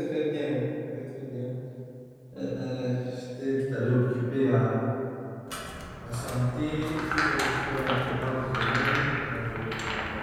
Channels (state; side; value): identical; both; correlation 1.00